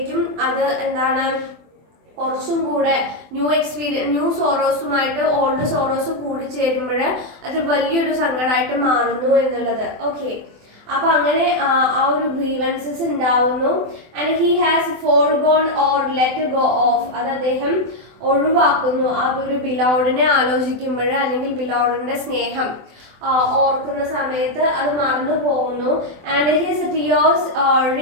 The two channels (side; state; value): left; late; 24 ms